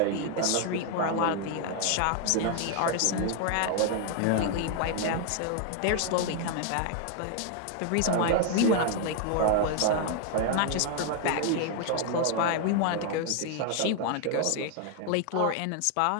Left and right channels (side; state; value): both; different; correlation 0.00